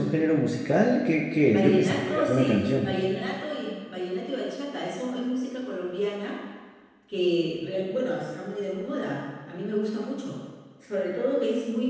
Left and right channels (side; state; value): both; identical; correlation 1.00